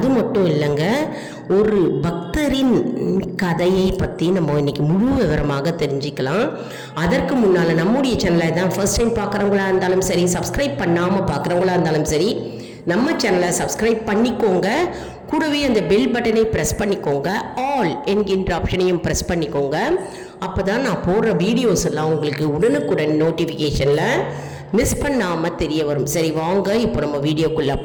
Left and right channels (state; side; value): identical; both; correlation 1.00